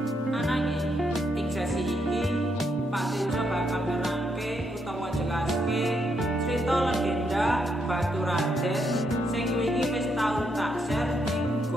Ananging ing sesi iki Pak Tejo bakal nerangke utawa jelaske cerita legenda Batu Raden sing wingi wis tau tak share ing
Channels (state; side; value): normal; both; correlation 0.78